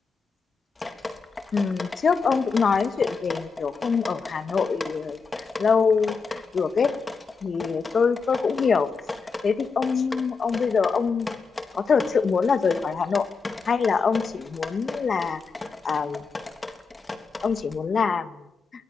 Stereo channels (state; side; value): quieter; right; 5.0 dB